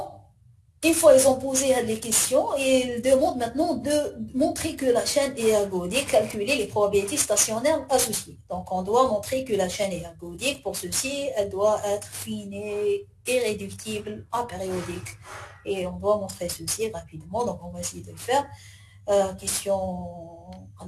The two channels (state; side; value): identical; both; correlation 1.00